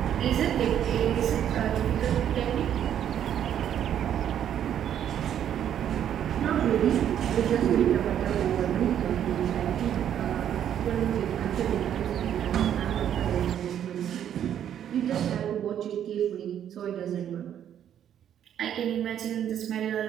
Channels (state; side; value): quieter; left; 9.9 dB